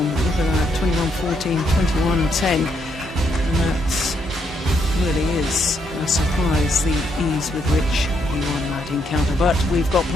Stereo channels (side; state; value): both; normal; correlation 0.75